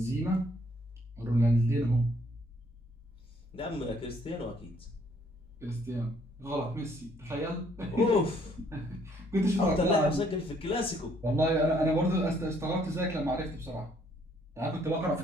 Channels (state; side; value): normal; both; correlation 0.65